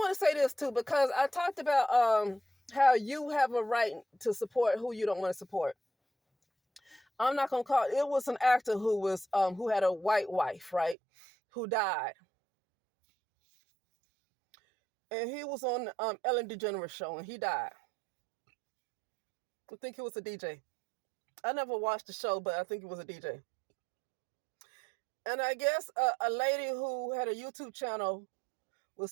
to say this too, because I talked about how you have a right to support who you don't want to support. I'm not gonna call it was an actor who had a white wife, right? Who died. And he was on Ellen DeGeneres show, and he died. I think he was a DJ. I never watched the show, but I think he was a DJ. And I guess a lady who had a YouTube channel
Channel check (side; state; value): left; drops out; at 11.0 s